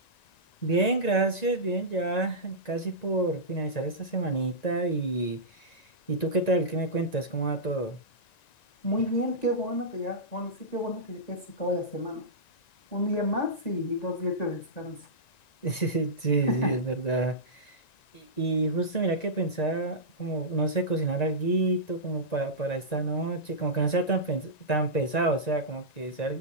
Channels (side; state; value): right; late; 1.9 ms